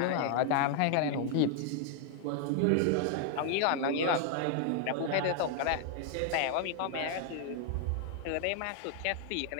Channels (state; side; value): different; both; correlation 0.00